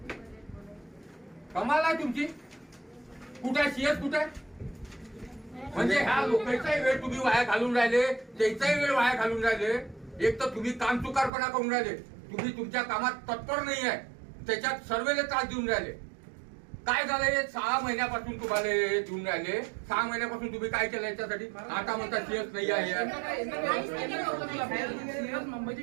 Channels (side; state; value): left; drops out; at 11.3 s